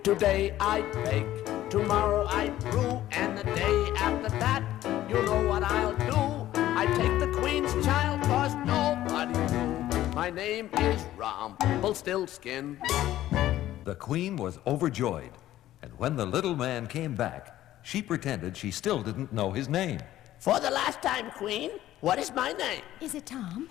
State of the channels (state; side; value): quieter; right; 13.8 dB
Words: Today I bake, tomorrow I brew, and the day after that, you know what I'll do. I take the queen's child, 'cause nobody knew. My name is Rumpelstiltskin. The queen was overjoyed, and when the little man came back, she pretended she still didn't know his name. For the last time, queen, what is my name? Is it Tom?